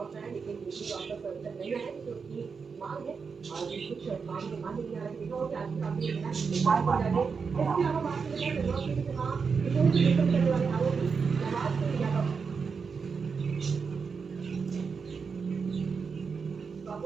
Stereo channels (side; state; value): left; quieter; 5.5 dB